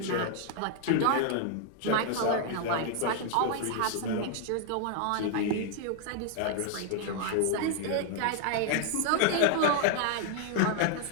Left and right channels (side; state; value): both; different; correlation 0.00